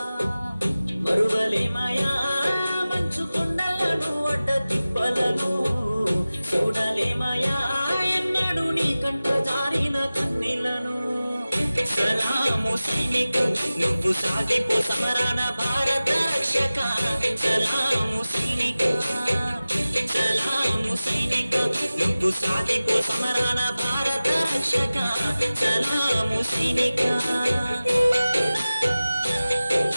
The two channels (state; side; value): inverted; both; correlation -0.97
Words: మరువలేమయా మంచు కొండలను అడ్డ తిప్పలను, చూడలేమయా ఎన్నడు నీ కంట జారిన కన్నీళ్లను. సలాము సైనికు నువ్వు సాగిపో సమరణ భారత రక్షక, సలాము సైనిక, సలాము సైనిక నువ్వు సాగిపో సమరణ భారత రక్షక, సలాము సైనిక.